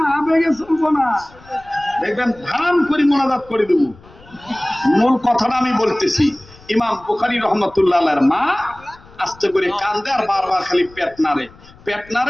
আবেগে চলবো না। দেখবেন ধাম করে মোনাজাত করে দেব। মূল কথাটা আমি বলতেছি, ইমাম বুখারী রাহমাতুল্লাহ আলাইহির মা আস্তে করে কান্দে আর বারবার খালি পেট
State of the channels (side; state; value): left; noise; rumble, 24 dB below the sound